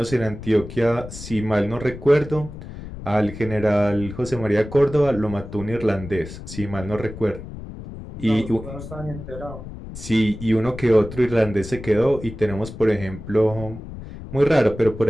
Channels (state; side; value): noise; left; rumble, 12 dB below the sound